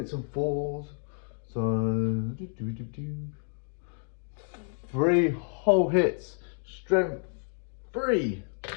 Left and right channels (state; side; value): silent; right; 58 dB below the other